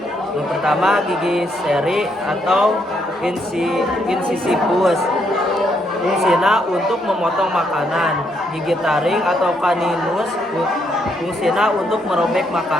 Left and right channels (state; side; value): normal; both; correlation 0.75